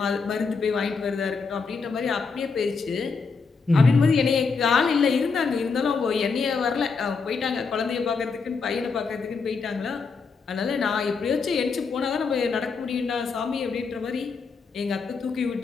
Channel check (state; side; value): quieter; right; 4.9 dB